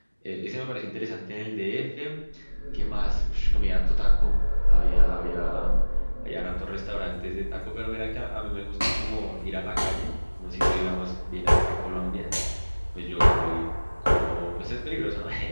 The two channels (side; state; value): both; inverted; correlation -1.00